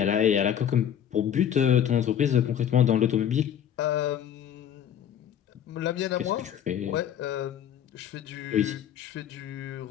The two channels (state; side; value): quieter; right; 9.5 dB